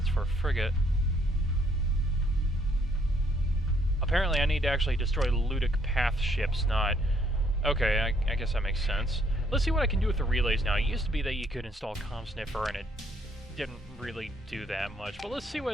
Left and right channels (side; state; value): both; normal; correlation 0.68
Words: for a frigate. Apparently I need to actually destroy Ludic Path ships, not... Okay, I guess that makes sense. Let's see what I can do with the relays now. It used to be that you could install Comm Sniffer, and it didn't really do that much. But let's see what